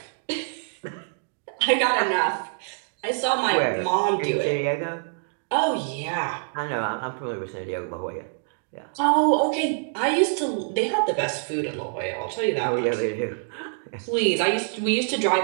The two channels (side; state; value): left; silent; digital silence